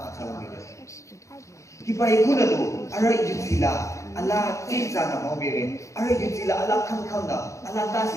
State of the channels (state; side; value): late; right; 0.15 ms